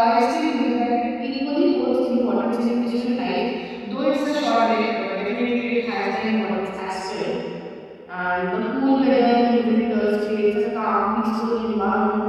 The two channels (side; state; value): both; identical; correlation 1.00